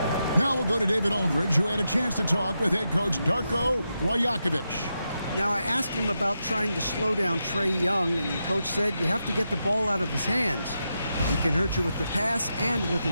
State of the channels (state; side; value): inverted; both; correlation -0.86